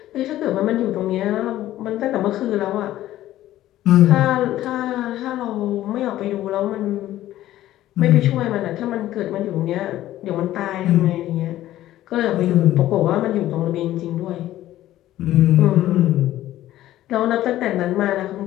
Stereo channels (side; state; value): right; quieter; 14.1 dB